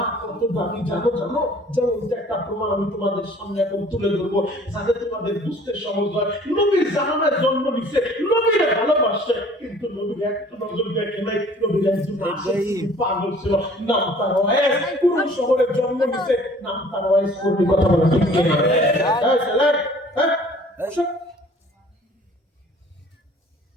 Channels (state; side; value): normal; both; correlation 0.52